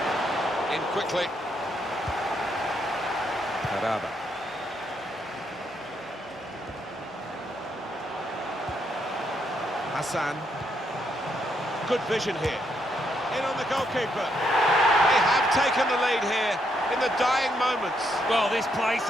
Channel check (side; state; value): both; normal; correlation 0.76